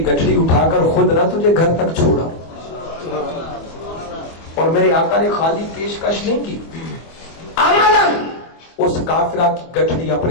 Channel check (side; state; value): right; late; 24 ms